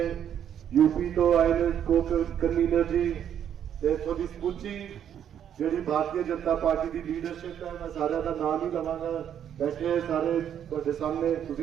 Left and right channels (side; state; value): left; quieter; 9.4 dB